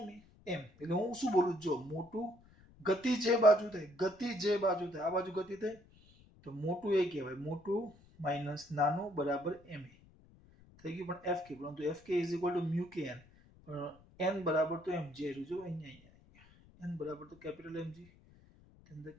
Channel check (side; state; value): left; noise; rumble, 26 dB below the sound